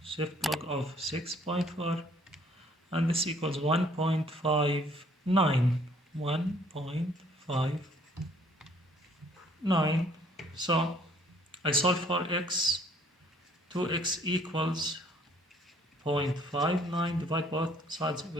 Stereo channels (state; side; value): normal; both; correlation 0.61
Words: shift log of 6.4, and this equals 1.59. 1.59. So I solve for x. 2x equals 0.59. Divide both sides of the